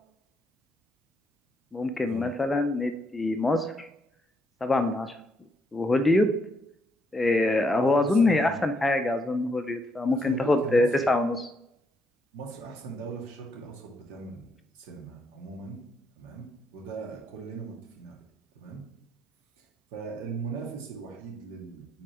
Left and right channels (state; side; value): normal; both; correlation 0.76